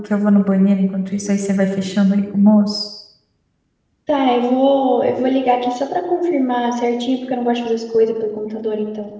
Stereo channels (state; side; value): identical; both; correlation 1.00